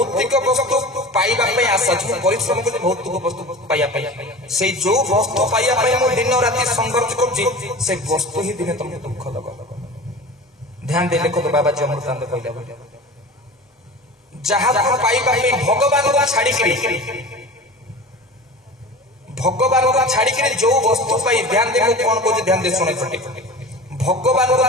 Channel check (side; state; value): both; normal; correlation 0.35